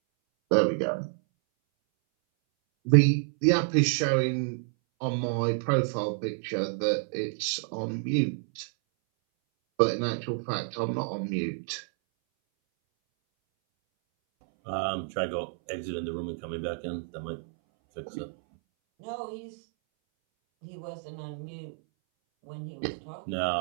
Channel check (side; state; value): left; silent; 58 dB below the other